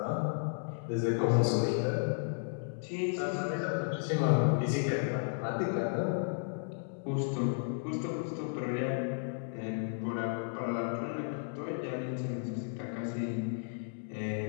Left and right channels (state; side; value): silent; right; digital silence